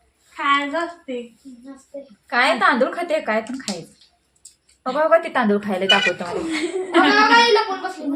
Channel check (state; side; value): identical; both; correlation 1.00